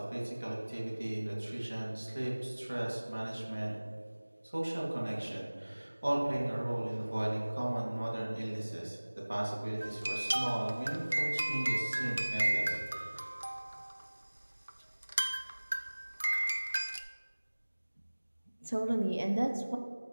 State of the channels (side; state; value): both; inverted; correlation -1.00